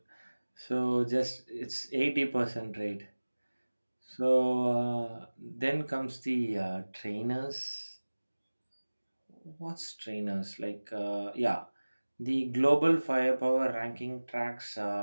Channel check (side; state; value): both; inverted; correlation -1.00